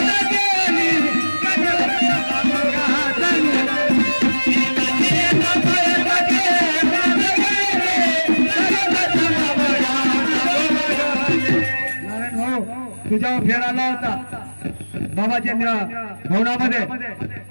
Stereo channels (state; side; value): inverted; both; correlation -1.00